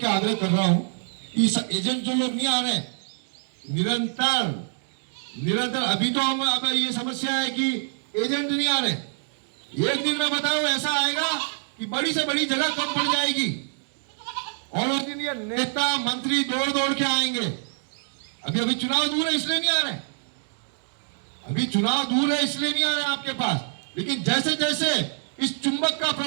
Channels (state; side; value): silent; left; digital silence